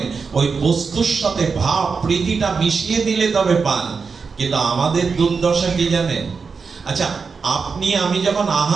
ওই বস্তুর সাথে ভাব প্রীতিটা মিশিয়ে দিলে তবে পান। কিন্তু আমাদের দুর্দশা কি জানেন? আচ্ছা, আপনি আমি যখন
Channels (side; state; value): left; quieter; 5.2 dB